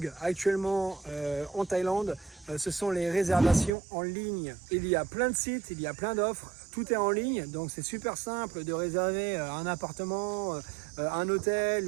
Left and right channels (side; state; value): left; drops out; at 3.7 s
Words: actuellement en Thaïlande, ce sont les réservations en ligne. Il y a plein de sites, il y a plein d'offres, tout est en ligne, donc c'est super simple de réserver un appartement, un hôtel,